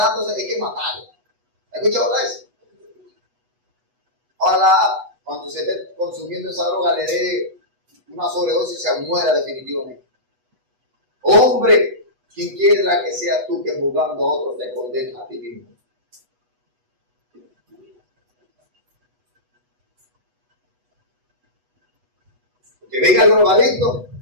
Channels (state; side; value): late; left; 8.1 ms